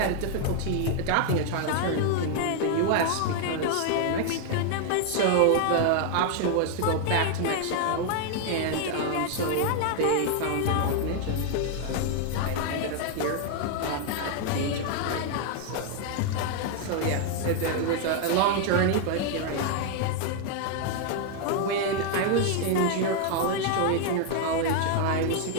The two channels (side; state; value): both; different; correlation 0.00